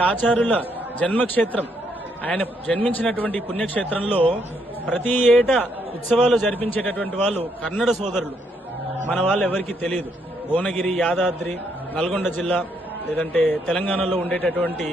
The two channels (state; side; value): normal; both; correlation 0.74